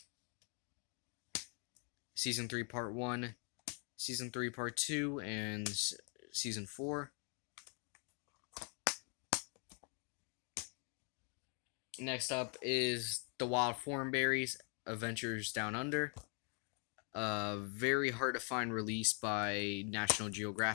Season 3 part 1. Season 3 part 2. And season 4. Next up is The Wild Thornberrys, Adventures Down Under. Very hard to find release by National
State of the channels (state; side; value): quieter; right; 38.9 dB